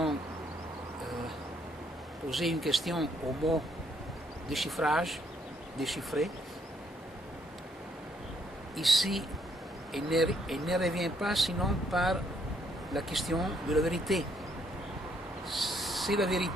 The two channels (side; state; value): both; normal; correlation 0.70